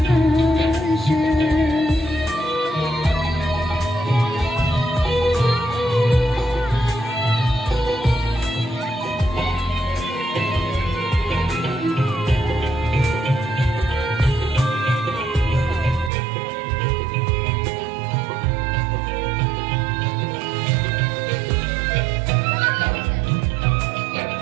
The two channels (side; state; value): left; drops out; at 16.1 s